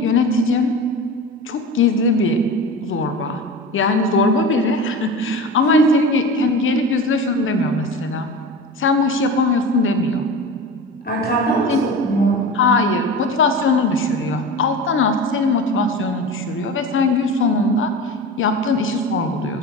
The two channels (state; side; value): normal; both; correlation 0.31